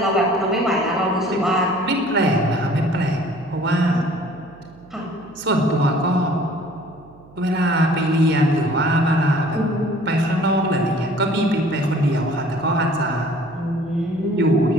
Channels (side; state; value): right; noise; hum, 24 dB below the sound